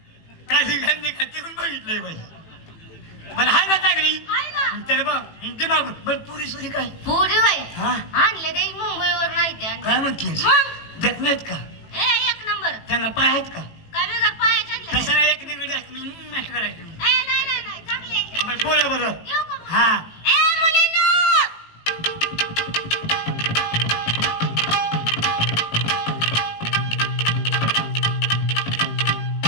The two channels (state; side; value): late; right; 18 ms